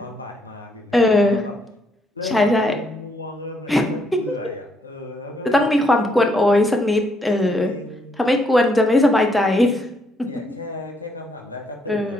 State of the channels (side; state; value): both; normal; correlation 0.73